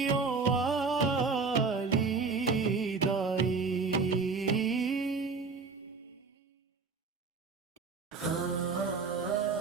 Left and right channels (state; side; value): quieter; left; 4.6 dB